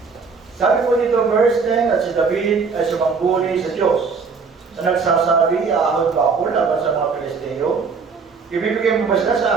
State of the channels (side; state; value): left; quieter; 5.1 dB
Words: Sabi po dito, verse 10, at si David ay sumangguni sa Diyos. Na nagsasabi, aahon ba ako laban sa mga Pilisteo? Ibibigay mo ba sila sa